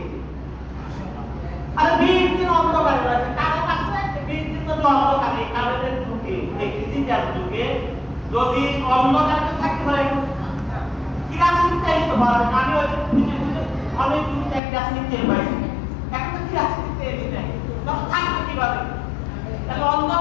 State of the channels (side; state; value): right; drops out; at 14.6 s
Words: আরে 20 দিন অন্ধকারে রয়েছে, কারো কাছে 20 দিন যদি অন্ধকারে, কারোদের যুগে, এই ডিজিটাল যুগে যদি অন্ধকারে থাকতে পারে, কিরাসিনিতে ভালো, আমি ওই অনেক দিন এক কিরাসিনিতে পাইছি, এখন তো কিরাসিনিতে নেই, তখন থাকবে কিভাবে? তাহলে